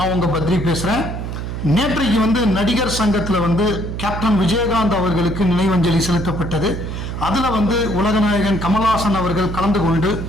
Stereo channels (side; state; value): right; noise; hum, 6 dB below the sound